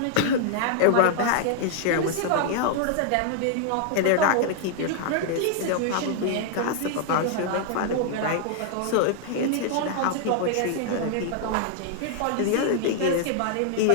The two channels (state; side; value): different; both; correlation -0.01